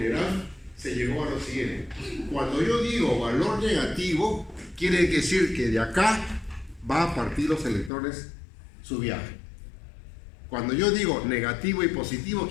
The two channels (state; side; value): drops out; right; at 7.9 s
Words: se llegó a lo siguiente. Cuando yo digo valor negativo, quiere decir que de acá va a partir los electrones su viaje. Cuando yo digo negativo y positivo,